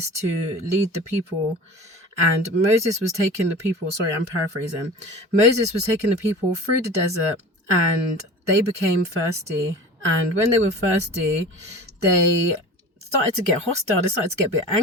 to lead the people, and Moses was taking the people, sorry, I'm paraphrasing. Moses was taking the people through the desert, and they became thirsty. And when they were thirsty, they started to get hostile. They started to get a bit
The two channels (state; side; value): normal; both; correlation 0.37